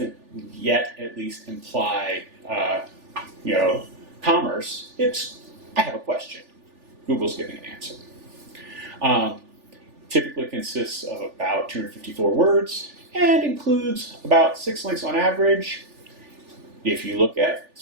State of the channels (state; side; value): late; left; 3.4 ms